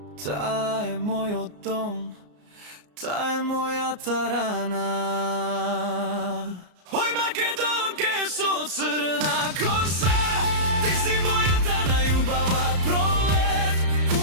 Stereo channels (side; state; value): left; late; 34 ms